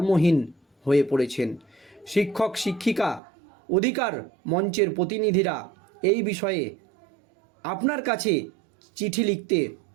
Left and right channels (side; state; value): left; drops out; at 3.2 s